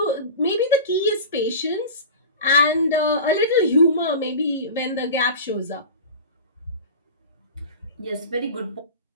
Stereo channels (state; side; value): inverted; both; correlation -0.32